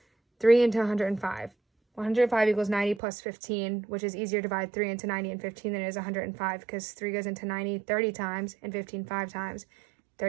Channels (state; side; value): drops out; left; at 3.0 s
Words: 3 into 105. 105 equals 90 plus 15, which is easier to divide 3 into 90 and 15 than it is 105 because 3 goes into 90 30 times and 15 5 times.